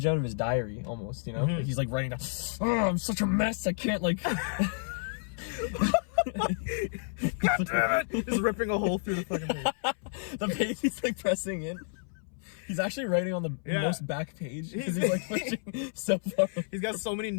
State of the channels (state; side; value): silent; right; 58 dB below the other